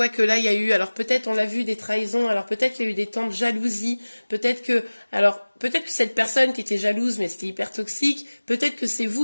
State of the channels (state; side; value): inverted; both; correlation -1.00